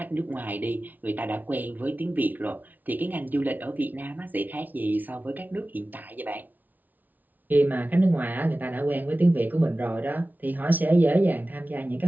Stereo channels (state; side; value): late; left; 0.081 ms